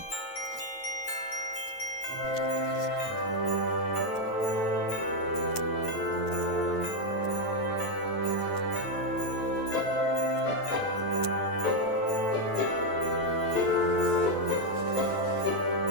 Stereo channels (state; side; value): late; right; 9.1 ms